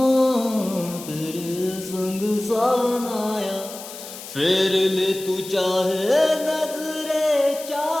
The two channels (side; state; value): left; noise; hiss, 13 dB below the sound